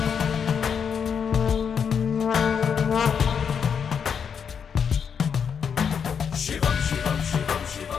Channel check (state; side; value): quieter; right; 7.1 dB